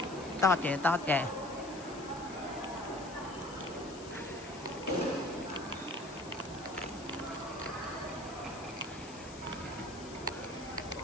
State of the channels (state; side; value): noise; left; hiss, 16 dB below the sound